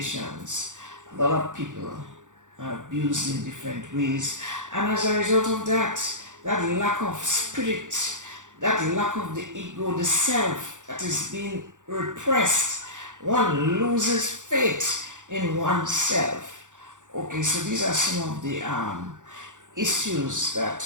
a lot of people are abused in different ways, and as a result of that lack of spirit, that lack of the ego, the self that is being repressed, one loses faith in oneself. Okay, so these are some of the issues that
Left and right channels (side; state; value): left; late; 0.86 ms